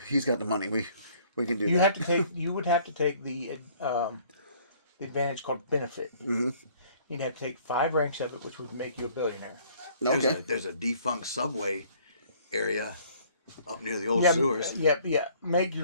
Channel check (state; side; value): inverted; both; correlation -0.57